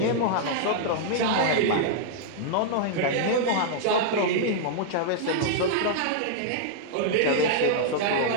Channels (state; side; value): different; both; correlation -0.01